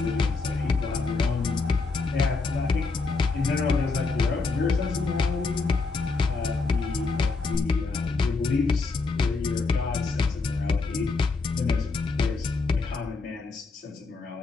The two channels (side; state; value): right; quieter; 4.1 dB